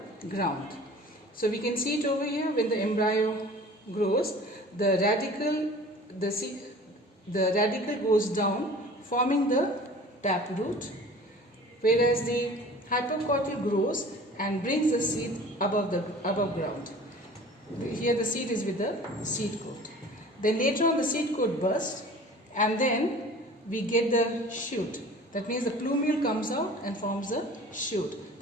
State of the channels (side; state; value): both; normal; correlation 0.44